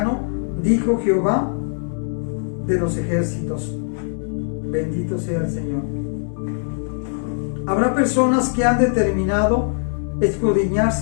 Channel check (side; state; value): right; silent; digital silence